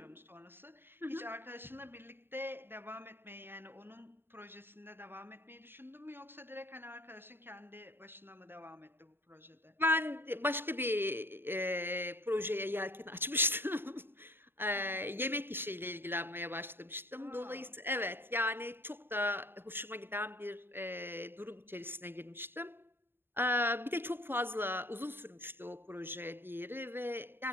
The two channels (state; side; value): late; left; 0.10 ms